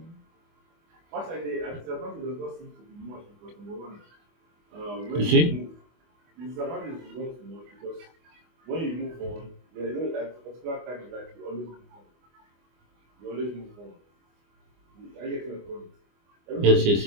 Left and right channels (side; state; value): left; late; 24 ms